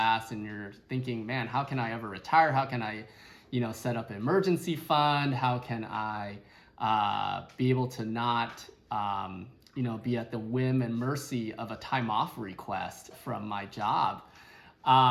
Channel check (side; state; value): both; identical; correlation 1.00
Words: and you're thinking, man, how can I ever retire? How can I set up an emergency fund? How can I be able to not, be at the whim and mercy of a time off request from my job?